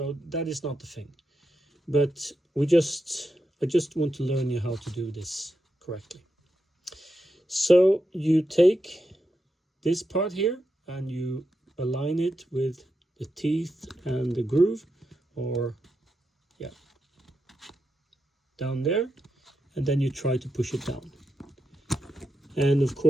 that is not the thing. But I just want to learn you how to do this correctly. So you take this part here and you align it with the teeth and the groove, or yeah, down there, and then you try to push it down. And of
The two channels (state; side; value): normal; both; correlation 0.86